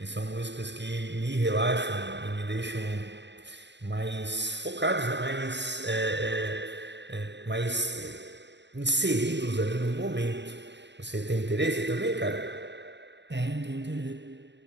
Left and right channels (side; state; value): left; late; 0.51 ms